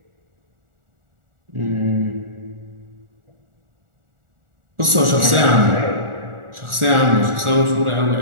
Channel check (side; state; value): left; late; 1.4 ms